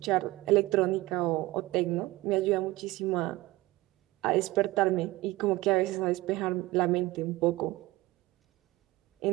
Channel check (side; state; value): left; quieter; 19.4 dB